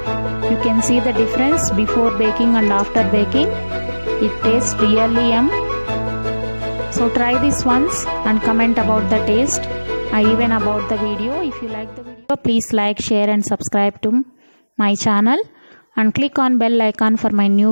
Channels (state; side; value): inverted; both; correlation -1.00